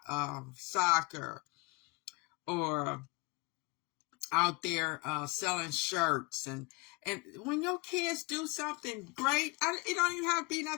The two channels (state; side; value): quieter; right; 27.1 dB